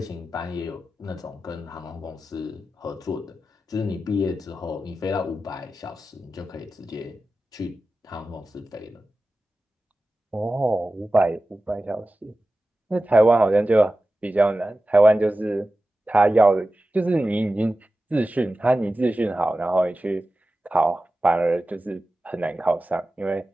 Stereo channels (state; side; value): normal; both; correlation 0.94